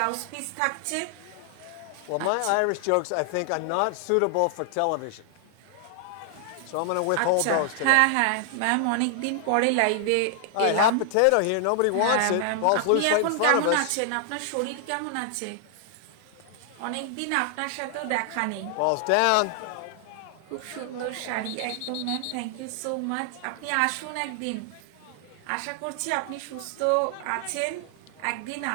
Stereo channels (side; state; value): both; different; correlation 0.00